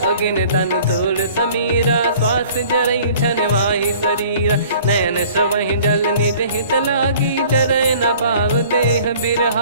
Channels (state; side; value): inverted; both; correlation -0.50